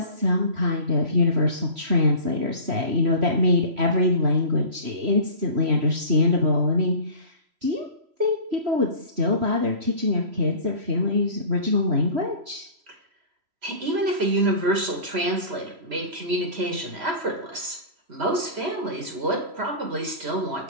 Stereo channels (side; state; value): left; late; 3.0 ms